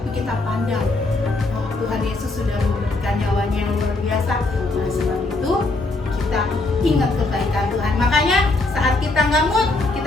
kita pandang. Oh, Tuhan Yesus sudah memberikan nyawanya yang luar biasa. Oleh sebab itu kita ingat kebaikan Tuhan. Makanya saat kita nggak mood,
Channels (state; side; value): quieter; right; 3.1 dB